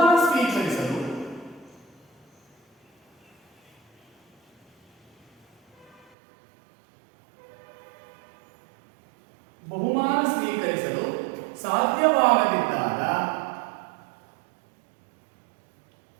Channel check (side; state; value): left; drops out; at 6.1 s